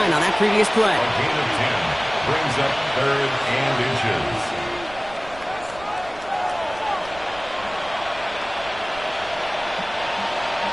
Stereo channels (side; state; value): right; noise; rumble, 19 dB below the sound